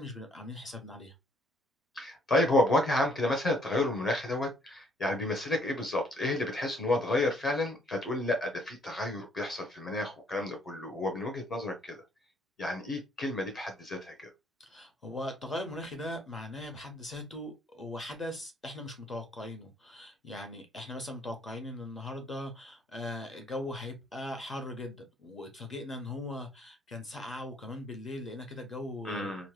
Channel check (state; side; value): normal; both; correlation 0.65